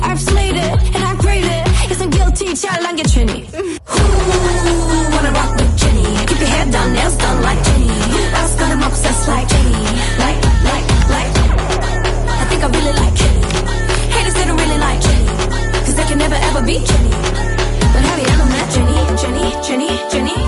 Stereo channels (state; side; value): identical; both; correlation 1.00